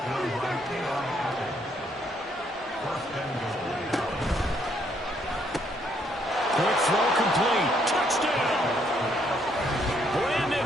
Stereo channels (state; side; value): normal; both; correlation 0.70